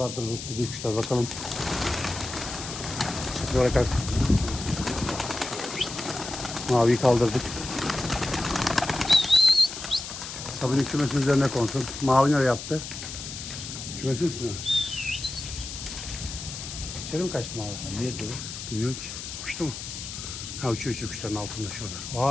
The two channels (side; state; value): left; noise; hiss, 9 dB below the sound